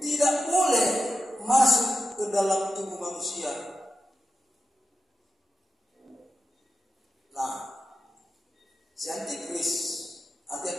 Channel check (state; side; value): normal; both; correlation 0.88